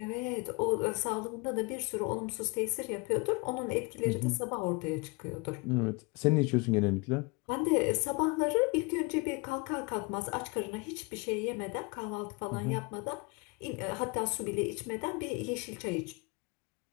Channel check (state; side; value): quieter; right; 28.5 dB